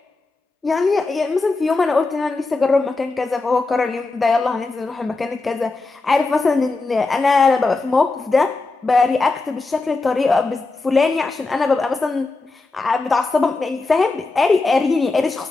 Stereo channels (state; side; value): quieter; right; 3.6 dB